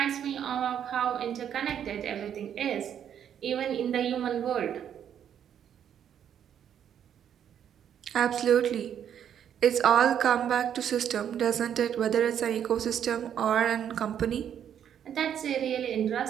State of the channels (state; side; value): quieter; left; 9.2 dB